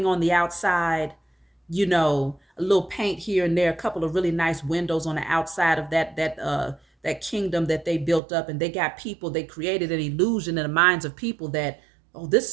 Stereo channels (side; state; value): left; drops out; at 8.2 s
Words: on the outside, you know, a little paint here and there, a couple of really nice windows on the outside of that kingdom that they built up. And they got people, they created an illusion in the minds of people that, oh, this